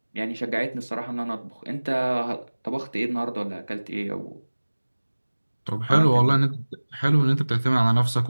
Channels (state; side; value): inverted; both; correlation -1.00